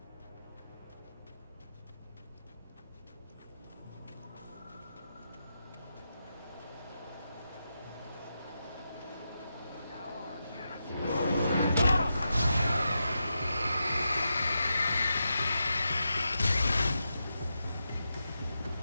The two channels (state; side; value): inverted; both; correlation -0.88